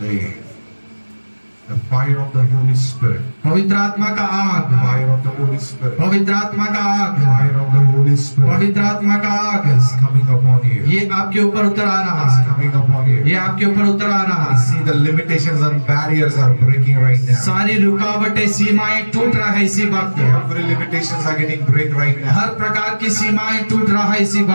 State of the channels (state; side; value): inverted; both; correlation -1.00